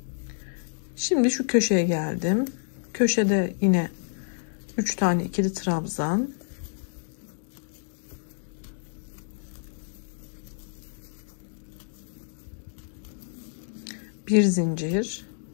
Şimdi şu köşeye geldim. Köşede yine 3 tane ikili trabzan. Bir zincir.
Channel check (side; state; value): right; silent; digital silence